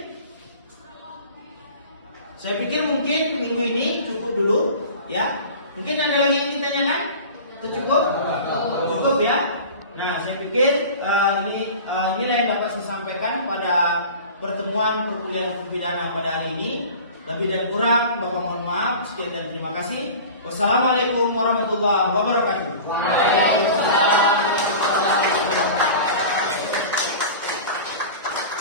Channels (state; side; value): inverted; both; correlation -0.38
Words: mungkin minggu ini cukup dulu, ya. Mungkin ada lagi yang ditanyakan? Itu cukup? Cukup ya. Nah, saya pikir inilah yang dapat saya sampaikan pada pertemuan perkuliahan hukum pidana pada hari ini. Lebih dan kurang, Bapak mohon maaf. Sekian dan terima kasih. Wassalamualaikum warahmatullahi wabarakatuh.